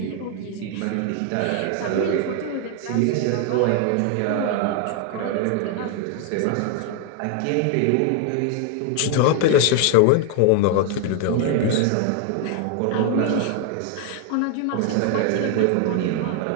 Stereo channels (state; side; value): different; both; correlation 0.00